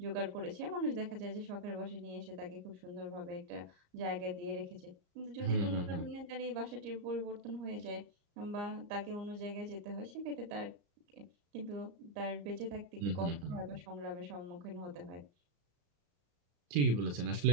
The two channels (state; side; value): late; left; 34 ms